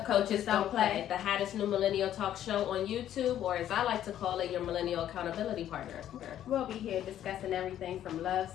Coaches Don't Play, the hottest new millennial talk show on YouTube, or as I like to call it, your millennial accountability partner. We'll be here discussing everything from love,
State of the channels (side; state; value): right; quieter; 11.3 dB